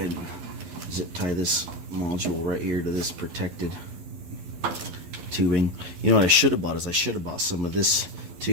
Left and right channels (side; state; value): left; late; 11 ms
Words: and zip tie this module right here to this protected tubing. You know what I should have bought is I should have bought some of this